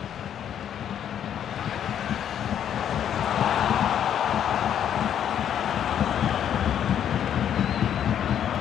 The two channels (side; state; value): right; quieter; 9.5 dB